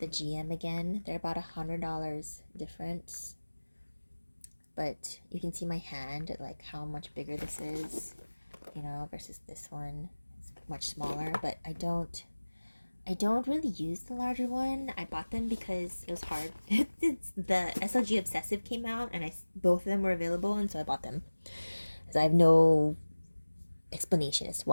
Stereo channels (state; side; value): inverted; both; correlation -1.00